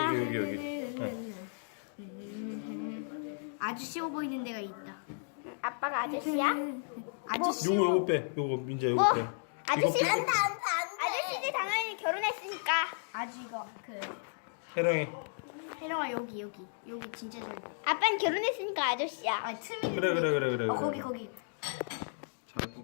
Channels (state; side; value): silent; right; digital silence